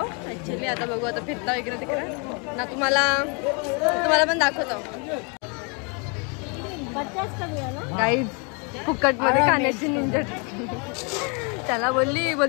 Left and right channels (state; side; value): quieter; right; 34.5 dB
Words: ऍक्च्युली आता बघू. आता फिरता इकडे तिकडे ना. तुम्हाला पण दाखवतो गाईज. फुकट मध्ये खाण्याची निंजट. त्याला